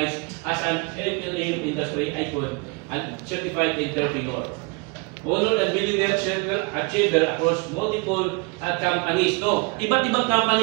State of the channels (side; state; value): left; quieter; 30.6 dB